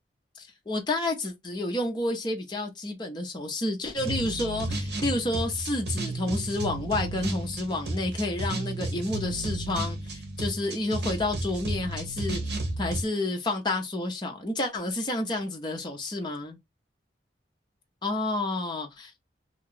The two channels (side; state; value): both; normal; correlation 0.58